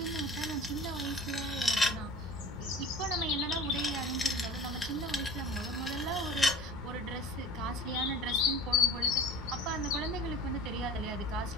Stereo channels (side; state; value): both; normal; correlation 0.40